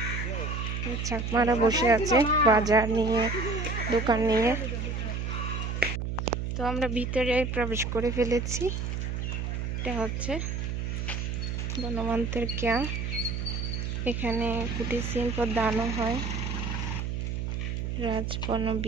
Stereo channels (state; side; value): noise; right; hum, 2 dB below the sound